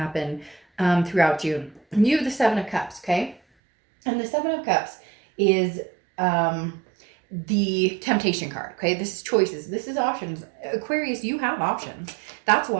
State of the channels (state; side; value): drops out; left; at 3.4 s